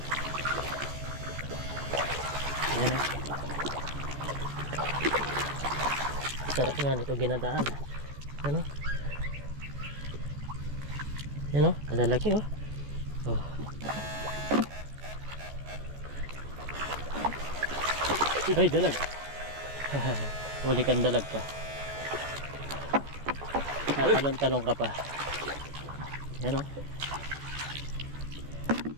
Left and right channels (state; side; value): late; left; 14 ms